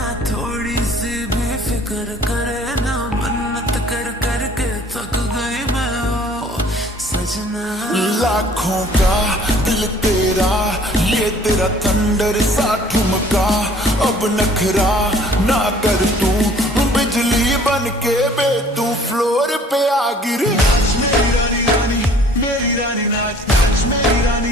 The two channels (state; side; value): normal; both; correlation 0.54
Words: थोड़ी सी भी फिक्र करे ना, मन्नत कर कर के थक गई मैं ओ सजना। लाखों का दिल तेरा, ये तेरा थंडर सा ठुमका, अब नखरा ना कर तू, बिजली बन के बे तू फ्लोर पे आ गिर। मेरी रानी रानी मेरी रानी नाच नाच, मेरी